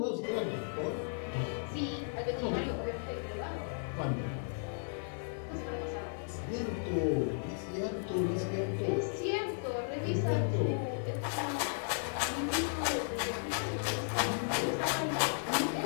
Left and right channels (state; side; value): silent; right; 54 dB below the other